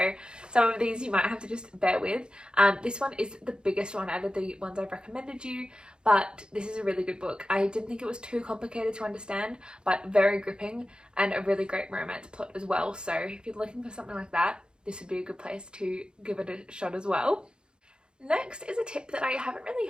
some of these you might have to just bear with. This one is the biggest one out of the ones I've recommended you, but this is a really good book. I didn't think it was too complicated to understand, but very gripping, and a really great romance plot as well. So if you're looking for something like that, this would be a good place to give it a shot as well. Next is a tip that I haven't really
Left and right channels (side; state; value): left; late; 0.049 ms